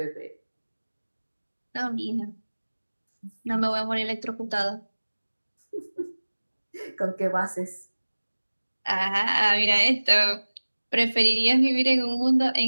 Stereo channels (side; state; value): both; inverted; correlation -1.00